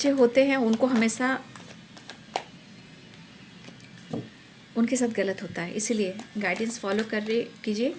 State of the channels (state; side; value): identical; both; correlation 1.00